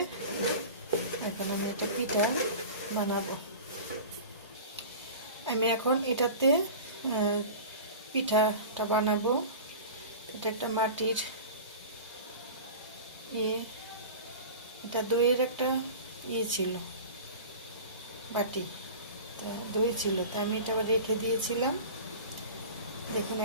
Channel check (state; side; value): inverted; both; correlation -0.35